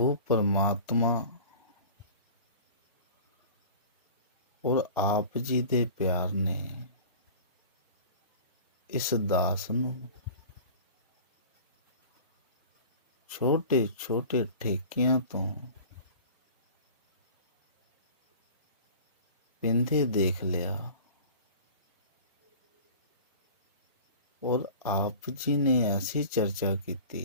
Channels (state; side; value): inverted; both; correlation -0.40